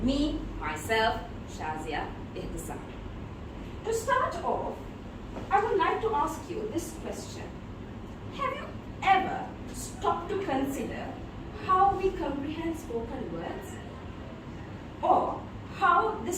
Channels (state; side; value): identical; both; correlation 1.00